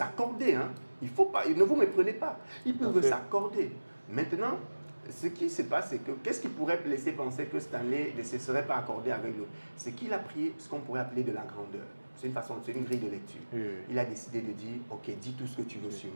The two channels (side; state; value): both; inverted; correlation -1.00